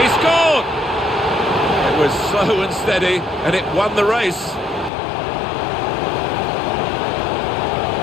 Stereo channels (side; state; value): right; drops out; at 4.9 s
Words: He scored. It was slow and steady, and it won the race.